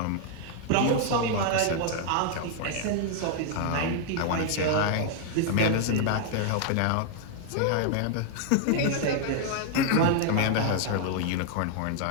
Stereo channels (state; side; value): different; both; correlation 0.00